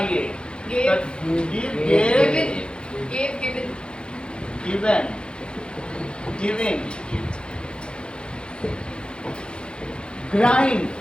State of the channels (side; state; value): right; late; 0.053 ms